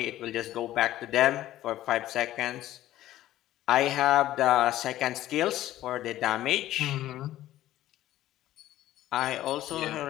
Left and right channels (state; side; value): quieter; right; 14.2 dB